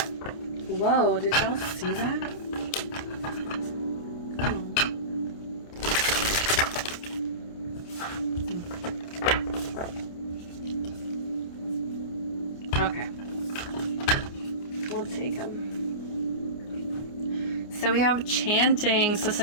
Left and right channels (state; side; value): late; right; 29 ms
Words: Whoa, did y'all see that? Okay. We'll take them. So we have chanting. So